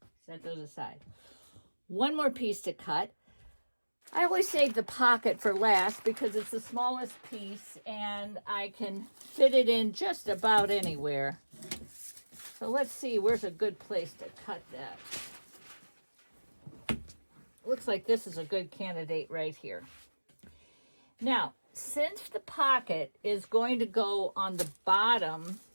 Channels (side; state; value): both; inverted; correlation -1.00